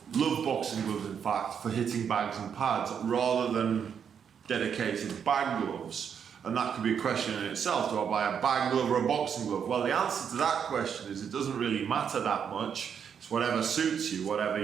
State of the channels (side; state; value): left; quieter; 7.6 dB